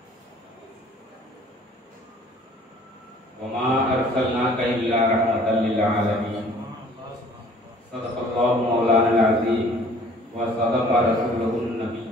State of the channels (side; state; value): both; normal; correlation 0.53